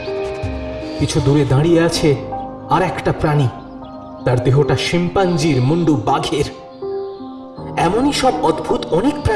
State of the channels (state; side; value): identical; both; correlation 1.00